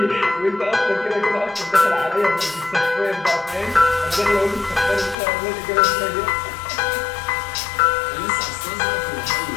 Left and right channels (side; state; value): right; drops out; at 5.2 s